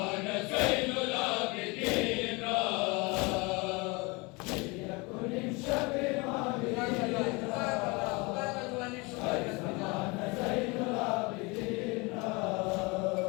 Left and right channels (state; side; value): quieter; right; 26.9 dB